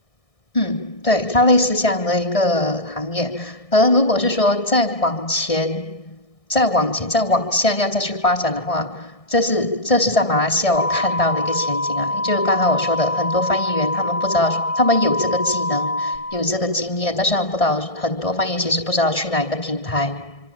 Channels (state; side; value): late; right; 1.6 ms